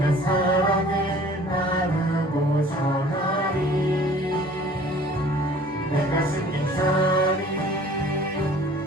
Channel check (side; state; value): both; normal; correlation 0.50